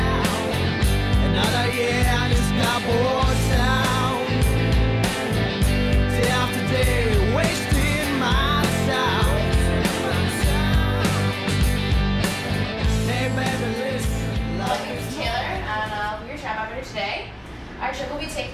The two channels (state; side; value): identical; both; correlation 1.00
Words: Another year in this cardboard town. Day after day, wasting my time. Hey baby, listen. My name is Taylor, and we're your tram operator today. Our trip will be